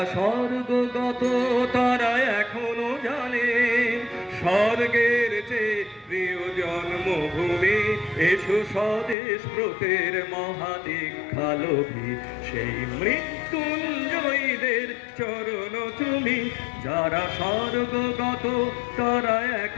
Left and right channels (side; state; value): right; drops out; at 9.2 s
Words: স্বর্গগত তারা এখনো জানে স্বর্গের চেয়ে প্রিয় জন্মভূমি। এসো স্বদেশ ব্রতের মহাদীক্ষালোভী, সেই মৃত্যুঞ্জয়ীদের চরণ চুমি। যারা স্বর্গগত তারা